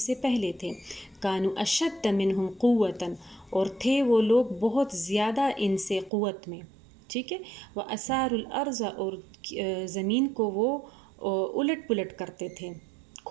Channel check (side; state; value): left; drops out; at 6.1 s